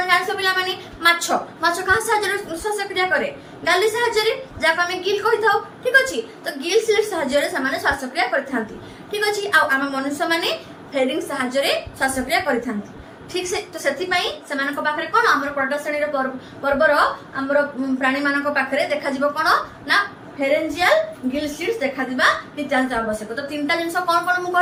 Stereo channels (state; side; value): identical; both; correlation 1.00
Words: জাଣିଛ ପିଲାମାନେ ମାଛ କାହା ସାହାଯ୍ୟରେ ଶ୍ୱାସକ୍ରିୟା କରେ ଗାଲି ସାହାଯ୍ୟରେ ଯାହାକୁ ଆମେ ଗିଲ୍ କହିଥାଉ ଠିକ ଅଛି ତ ଗିଲ୍ ସ୍ଲିଟ୍ସ ସାହାଯ୍ୟରେ ସେମାନେ ଶ୍ୱାସକ୍ରିୟା କରିଥାନ୍ତି ଠିକ ଅଛି ଆଉ ଆମ ମନୁଷ୍ୟମାନେ ଫେରିଂସ୍ ସାହାଯ୍ୟରେ ଶ୍ୱାସକ୍ରିୟା କରିଥାନ୍ତି ঠিক তো ସେଥିପାଇଁ ସେମାନଙ୍କ ପାଖରେ କ'ଣ ଆମର ପ୍ରଡକ୍ଟ ଶ୍ରେଣୀର ପର୍ବର ଆମର ପ୍ରାଣୀମାନଙ୍କ ପାଖରେ ଦେଖାଯିବ କ'ଣ ନା ଫେରେଞ୍ଜିଆଲ ଗିଲ୍ ସ୍ଲିଟ୍ସ ଦେଖାଯିବା ନିତ୍ୟାନ୍ତ ଆବଶ୍ୟକ ତ ତିନିଟା ଜିନିଷ କ'ଣ କ'ଣ ମୁଁ